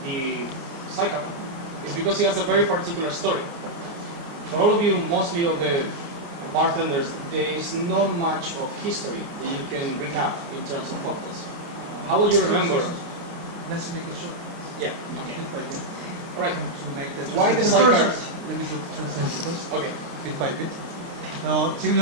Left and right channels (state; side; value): late; left; 29 ms